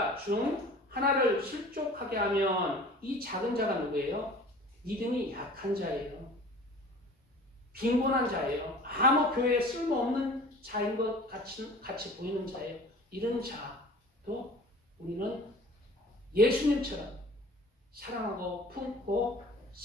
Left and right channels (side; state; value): both; normal; correlation 0.44